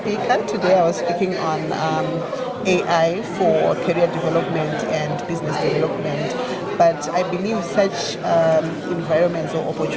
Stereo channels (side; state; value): both; identical; correlation 1.00